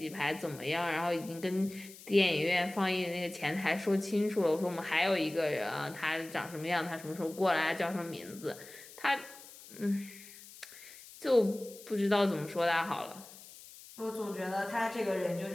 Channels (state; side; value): noise; left; hiss, 18 dB below the sound